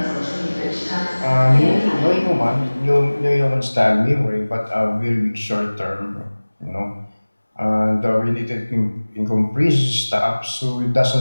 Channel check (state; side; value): inverted; both; correlation -1.00